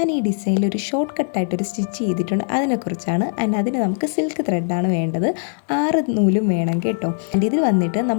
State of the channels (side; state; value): right; silent; digital silence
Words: ഈ ഡിസൈനിൽ ഒരു ഷോർട്ട് കട്ടായിട്ടൊരു സ്റ്റിച്ച് ചെയ്തിട്ടുണ്ട്. അതിനെക്കുറിച്ചാണ്. അതിന് നമുക്ക് സിൽക്ക് ത്രെഡാണ് വേണ്ടത്. 6 നൂലും വേണം കേട്ടോ. ഇതിൽ വന്നിട്ട്